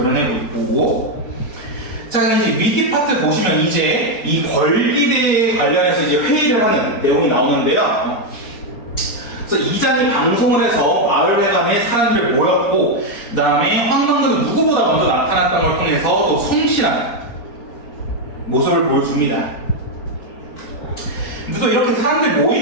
있고, 자, 이제 위기 파트 보시면 이제 이 권리대에 관련해서 이제 회의를 하는 내용이 나오는데요. 그래서 이장이 방송을 해서 마을회관에 사람들이 모였고, 그 다음에 황만근은 누구보다 먼저 나타났던 걸 통해서 또 성실한 모습을 보여줍니다. 근데 또 이렇게 사람들이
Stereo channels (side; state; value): right; late; 4.3 ms